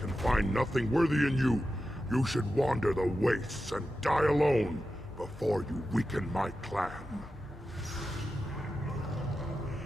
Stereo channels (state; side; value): normal; both; correlation 0.91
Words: find nothing worthy in you, you should wander the wastes and die alone before you weaken my clan.